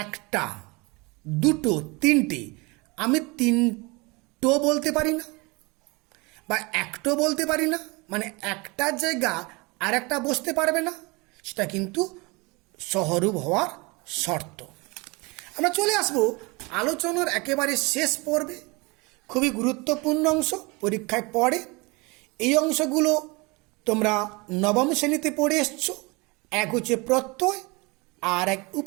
একটা, দুটো, তিনটে, আমি তিনটো বলতে পারি না বা একটো বলতে পারি না, মানে একটার জায়গা আর একটা বসতে পারবে না, সেটা কিন্তু সহরূপ হওয়ার শর্ত। আমরা চলে আসব আলোচনার একেবারে শেষ পর্বে। খুবই গুরুত্বপূর্ণ অংশ, পরীক্ষায় পড়ে। এই অংশগুলো তোমরা নবম শ্রেণীতে পড়ে এসছো। এক হচ্ছে প্রত্যয় আর এক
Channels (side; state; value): left; quieter; 26.4 dB